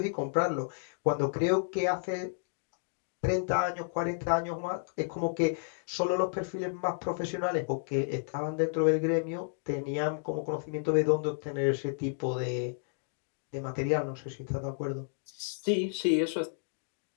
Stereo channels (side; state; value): right; silent; digital silence